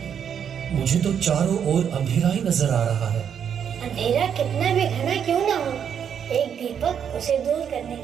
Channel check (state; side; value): quieter; left; 8.1 dB